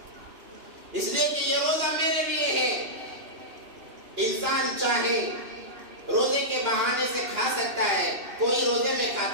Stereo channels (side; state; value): left; late; 2.9 ms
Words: اس لیے کہ یہ روزہ میرے لیے ہے۔ انسان چاہے روزے کے بہانے سے کھا سکتا ہے، کوئی روزے میں